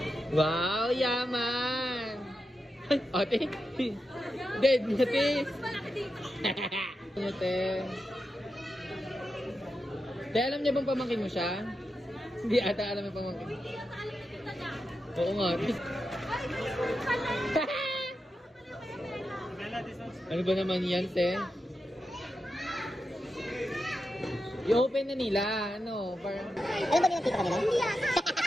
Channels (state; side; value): normal; both; correlation 0.88